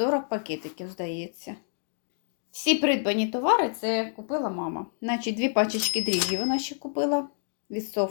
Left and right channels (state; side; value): silent; right; digital silence